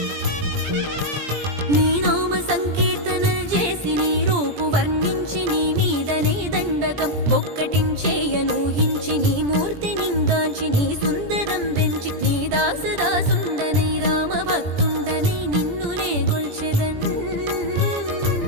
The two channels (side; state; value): left; late; 17 ms